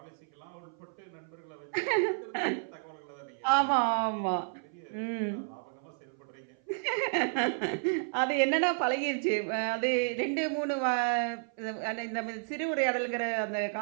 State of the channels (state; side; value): silent; left; 56 dB below the other